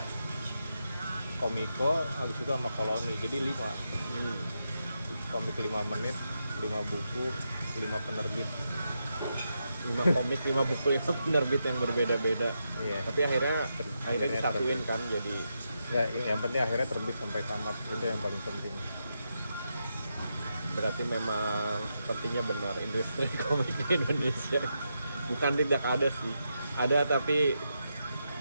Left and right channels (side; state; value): both; inverted; correlation -0.85